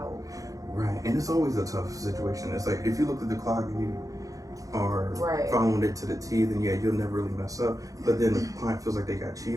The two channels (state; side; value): late; left; 0.17 ms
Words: Right, and it's always a tough situation. It's like if you look at the clock and you are following it to the T, then you'll never really mess up. But then the client feels like they got